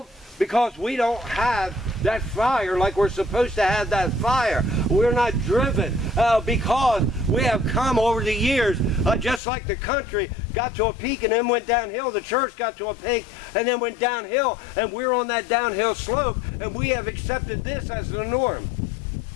Because we don't have that fire like we're supposed to have that fire. We're not driven because we have come over the years, just like the country got to a peak and then went downhill. The church got to a peak and then went downhill, and we're on that downhill slope, and we have accepted this as the norm.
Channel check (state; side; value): drops out; right; at 9.4 s